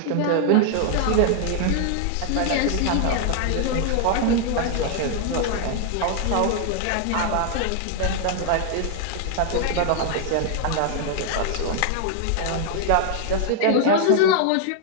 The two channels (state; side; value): different; both; correlation 0.00